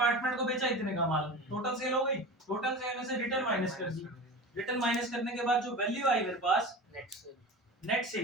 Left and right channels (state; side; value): normal; both; correlation 0.31